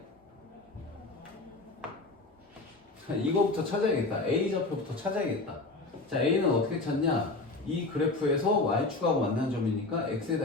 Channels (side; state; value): right; quieter; 3.3 dB